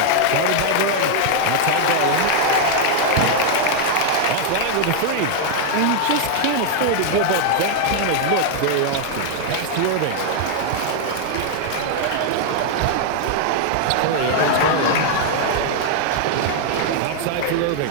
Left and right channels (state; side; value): different; both; correlation 0.00